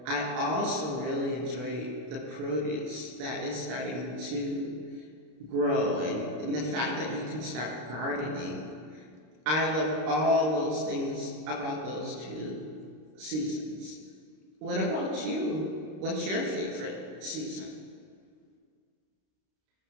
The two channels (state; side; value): late; left; 32 ms